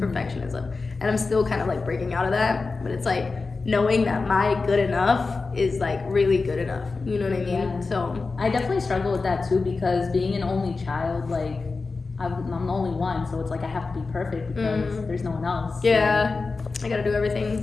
And I'm still kind of like breaking out of that, but it's like knowing that my good enough is like really good enough. You know what I mean? Yeah. So I definitely struggle with that too, because being an only child, like I'm the only one, so it's like I have to be perfect because there's no one else. Yeah, I gotta do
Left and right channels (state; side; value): quieter; right; 4.1 dB